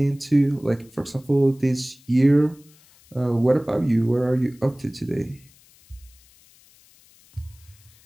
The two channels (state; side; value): noise; left; hiss, 28 dB below the sound